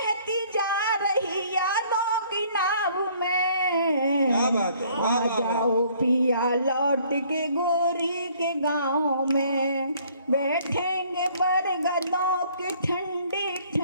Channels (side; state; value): both; inverted; correlation -0.60